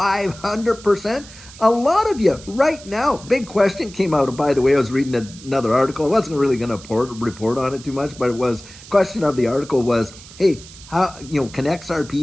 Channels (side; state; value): right; noise; hiss, 19 dB below the sound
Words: A lot of you right now, big question came out. By the way, I was reading another article. I wasn't really going to report on it too much, but it was, question of the article was, hey, how, can